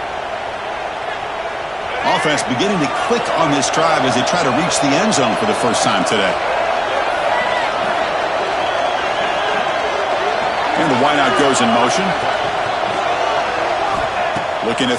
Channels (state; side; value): identical; both; correlation 1.00